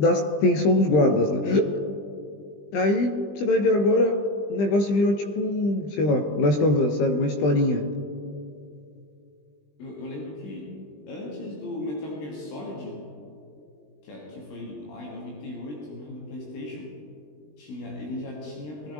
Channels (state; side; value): late; right; 20 ms